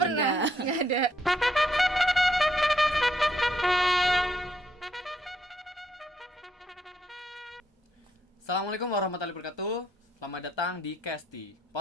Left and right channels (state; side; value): normal; both; correlation 0.73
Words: pernah, nggak ada. Assalamualaikum warahmatullahi wabarakatuh. Selamat datang di Kesti